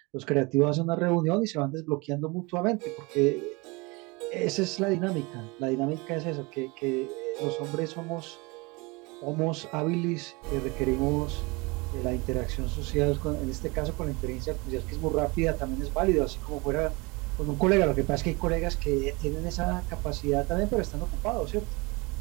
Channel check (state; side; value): quieter; left; 26.3 dB